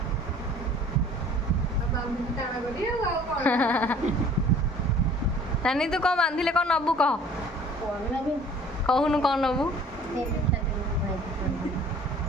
बाबू टाणा करी आ कोन नानी तू कौन बांधिले कौन नबू कह कहूनु कौन नबू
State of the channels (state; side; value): normal; both; correlation 0.50